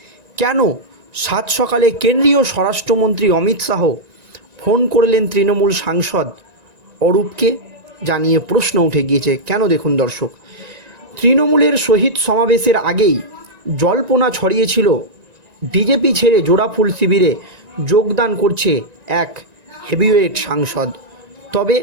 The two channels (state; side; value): late; left; 1.9 ms